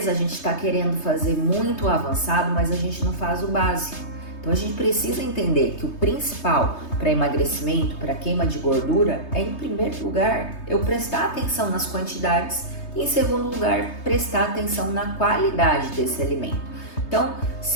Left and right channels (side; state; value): right; late; 3.3 ms